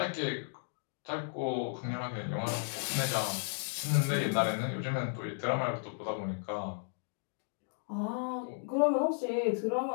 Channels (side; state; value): right; silent; digital silence